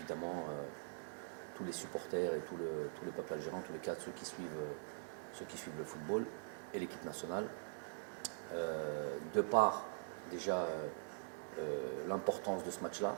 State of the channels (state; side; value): silent; left; digital silence